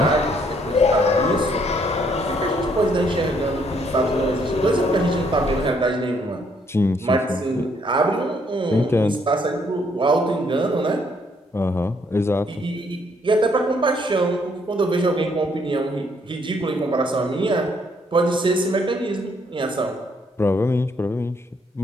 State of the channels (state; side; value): normal; both; correlation 0.69